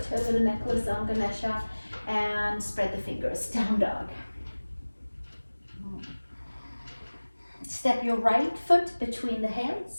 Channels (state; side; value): inverted; both; correlation -1.00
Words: a little necklace on Ganesha and spread the fingers, down dog. Step your right foot between the